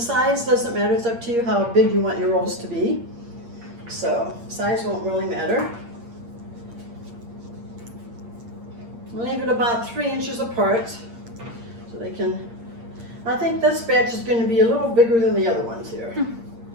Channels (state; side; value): late; left; 8.6 ms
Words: doesn't matter, it's up to you how big you want your rolls to be. So size won't really matter. Leave it about 3 inches apart so they can, I think this batch is going to be a little bigger than the other ones here.